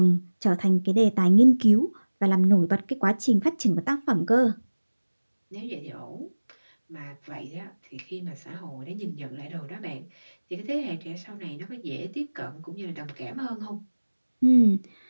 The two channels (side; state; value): both; inverted; correlation -1.00